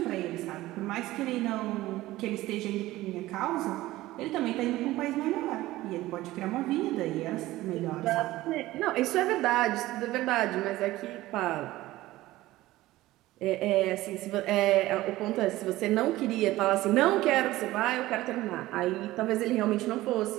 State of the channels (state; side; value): quieter; left; 17.0 dB